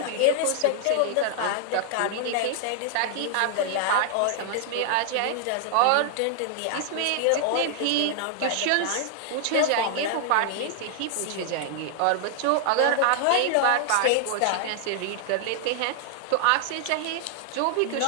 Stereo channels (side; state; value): both; different; correlation 0.00